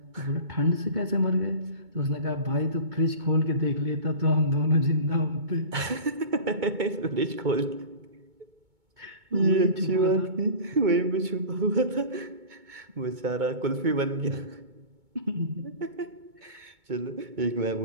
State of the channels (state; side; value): late; left; 2.2 ms